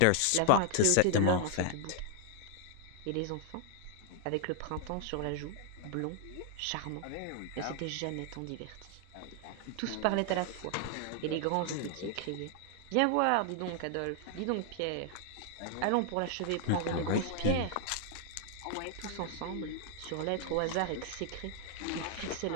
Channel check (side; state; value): both; different; correlation 0.00